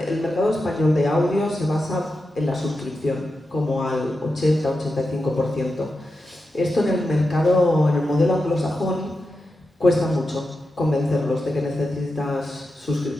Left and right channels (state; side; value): normal; both; correlation 0.89